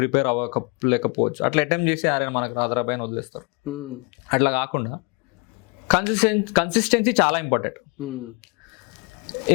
అవ్వలేకపోవచ్చు, అట్లా అటెంప్ట్ చేసి ఆరే మనకు రాదరాబాయ్ అని వదిలేస్తారు. అట్లా కాకుండా కన్సిస్టెన్సీ చాలా ఇంపార్టెంట్.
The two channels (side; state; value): right; quieter; 30.3 dB